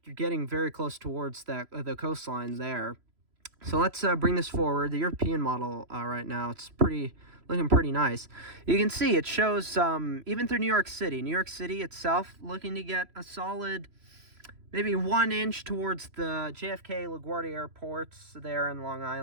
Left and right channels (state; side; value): late; left; 3.0 ms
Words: you're getting very close towards the coastlines there. So let's bring this forward. The European model right now, it's looking pretty nice. You can see it shows even through New York City. New York City itself looking to get a solid maybe 1 inch towards the JFK LaGuardia airports there in Long